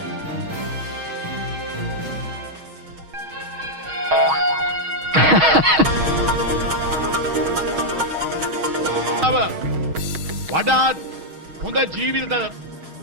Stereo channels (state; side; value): late; left; 6.3 ms